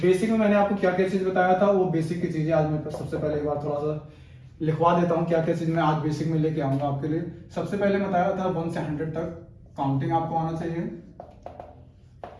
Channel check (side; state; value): both; identical; correlation 1.00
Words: में मैंने आपको क्या क्या चीज़ बताया था, वो बेसिक की चीज़ें आज मैं सबसे पहले एक बार थोड़ा सा लिखवा देता हूँ क्या क्या चीज़ मैं आज बेसिक में लेके आऊँगा आपके लिए। सबसे पहले बताया था 1 से 100 तक काउंटिंग आपको आना चाहिए।